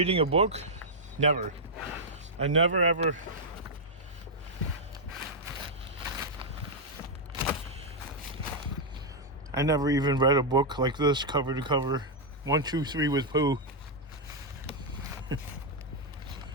a book? Never. I never ever. I never even read a book like this, cover to cover. 1, 2, 3 with Pooh.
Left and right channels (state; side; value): normal; both; correlation -0.04